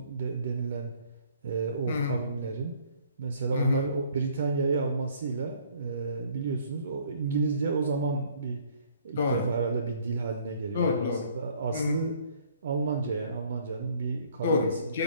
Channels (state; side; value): inverted; both; correlation -0.59